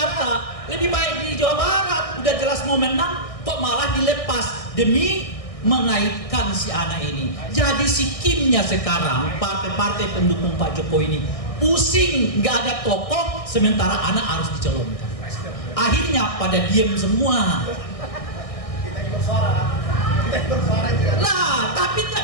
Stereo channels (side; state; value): right; late; 1.6 ms